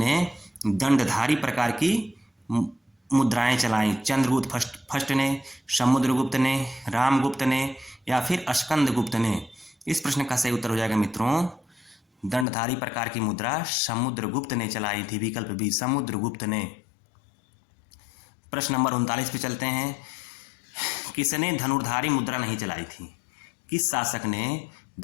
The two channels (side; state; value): right; drops out; at 12.5 s